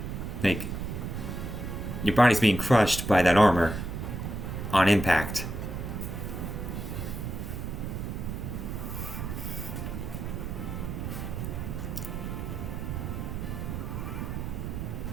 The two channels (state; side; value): noise; right; rumble, 4 dB below the sound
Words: your body's being crushed by that armor on impact.